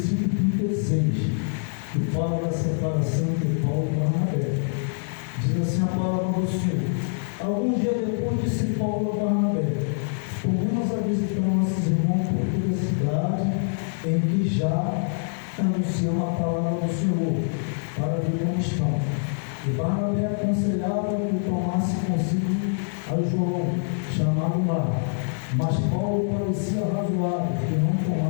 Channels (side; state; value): right; silent; digital silence